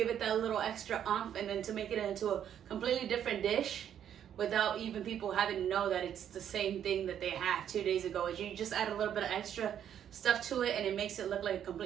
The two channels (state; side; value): quieter; left; 9.6 dB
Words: it that little extra oomph, and then to make it into a completely different dish without even people having to know that it's the same thing that they had 2 days ago. You just add a little bit of extra stuff to it, and it makes it look like a